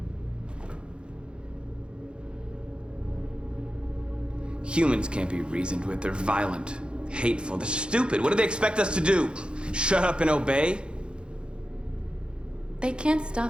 Humans can't be reasoned with. They're violent, hateful, they're stupid. What do they expect us to do? Shut up and obey? They can't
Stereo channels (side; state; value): left; late; 0.054 ms